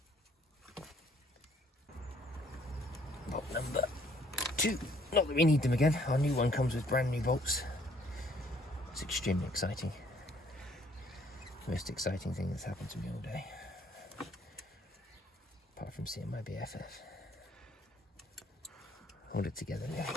Bolt number 2. Not that we need them again. Our new one comes with brand new bolts. It's extremely exciting. Most exciting thing that's happened to me all day. Apart from seeing my BFF. Hold it together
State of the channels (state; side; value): normal; both; correlation 0.63